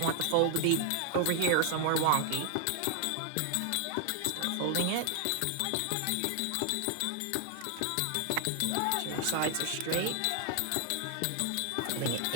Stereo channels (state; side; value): different; both; correlation 0.00